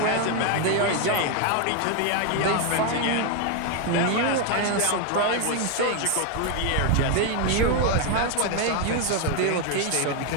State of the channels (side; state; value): both; different; correlation 0.01